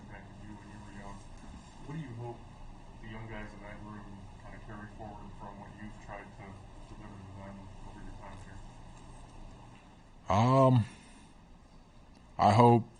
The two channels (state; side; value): identical; both; correlation 1.00